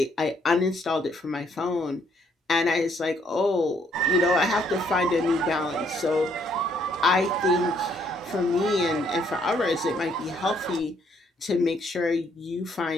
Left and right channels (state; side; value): normal; both; correlation 0.68